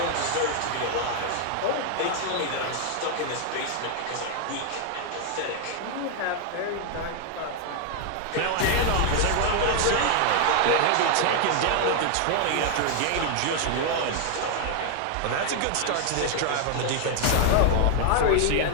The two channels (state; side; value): different; both; correlation 0.00